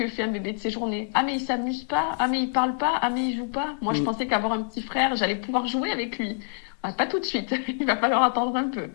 fait un bébé de ses journées. Ah, mais il s'amuse pas. Ah, mais il parle pas. Ah, mais il joue pas. Moi, je pensais qu'avoir un petit frère, j'allais pouvoir jouer avec lui. Pas tout de suite, il va falloir attendre un peu.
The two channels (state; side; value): silent; right; 61 dB below the other